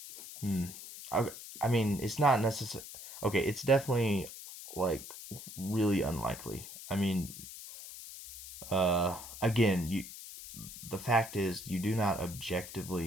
hmm. I, I mean, it's not necessary. Okay, it's definitely like really unlikely. I mean, again, the fact is you do not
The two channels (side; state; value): left; noise; hiss, 13 dB below the sound